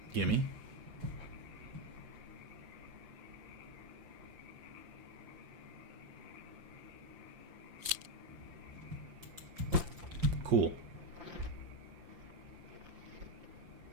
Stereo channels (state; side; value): late; left; 5.8 ms